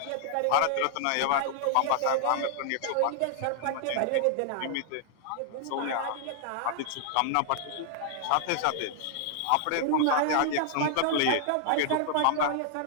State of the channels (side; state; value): both; different; correlation 0.00